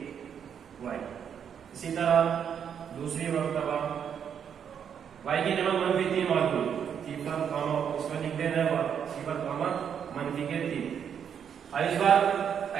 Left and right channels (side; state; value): left; quieter; 8.0 dB